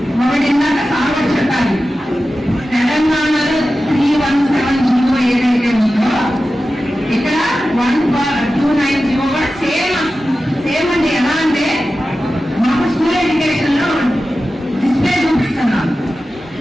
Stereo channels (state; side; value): normal; both; correlation 0.94